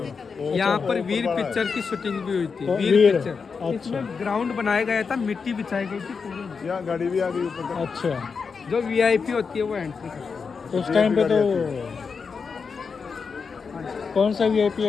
यहाँ पर वीर पिक्चर की शूटिंग भी हुई थी। वीर पिक्चर। इसमें ग्राउंड बनाया गया था, मिट्टी बिछाई गई थी पूरी। यहाँ गाड़ी भी आ गई ऊपर। अच्छा, जो वीआईपी होती है वो एंट्री करती है। उस टाइम पे तो कौन सा वीआईपी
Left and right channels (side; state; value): right; quieter; 5.4 dB